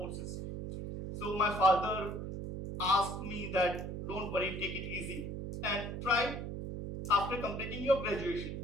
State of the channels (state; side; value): noise; right; hum, 6 dB below the sound